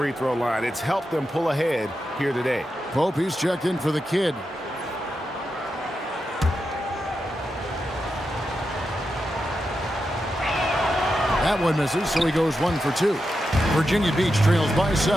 throw line. It's helped them pull ahead here today. Pope, he's checked in for the kid. That one misses, so he goes 1 for 2. Virginia Beach trails by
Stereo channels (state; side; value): normal; both; correlation 0.88